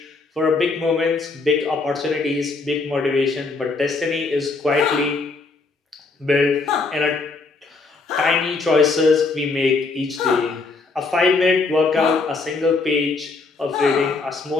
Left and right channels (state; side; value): quieter; right; 3.9 dB